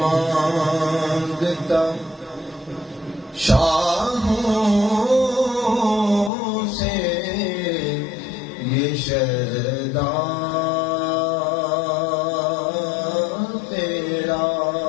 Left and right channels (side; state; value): right; drops out; at 6.3 s